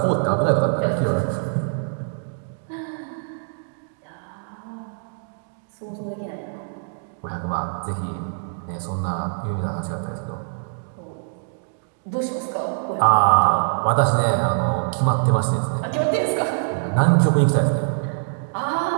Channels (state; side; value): silent; left; digital silence